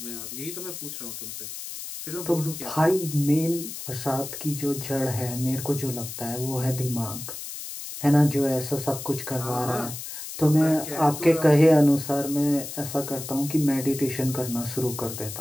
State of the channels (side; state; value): left; noise; hiss, 9 dB below the sound